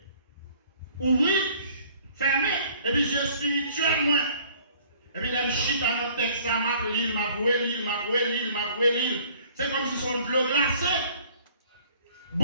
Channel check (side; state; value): both; inverted; correlation -0.55